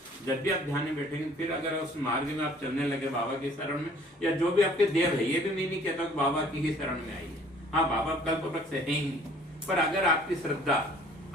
जब भी आप ध्यान में बैठेंगे फिर अगर उस मार्ग में आप चलने लगे बाबा की शरण में, या जो भी आपके देव है, ये भी मैं नहीं कहता कि बाबा की ही शरण में आइए। हाँ, बाबा कल्प वृक्ष है ही, पर अगर आपकी श्रद्धा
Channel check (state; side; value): normal; both; correlation 0.55